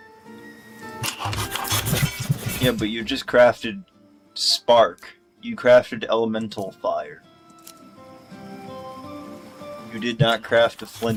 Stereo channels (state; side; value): identical; both; correlation 1.00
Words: Yeah, but you just crafted spark. You crafted elemental fire. You did not craft a